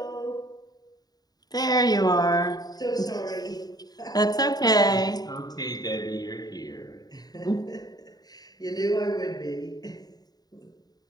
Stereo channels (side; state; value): right; late; 0.19 ms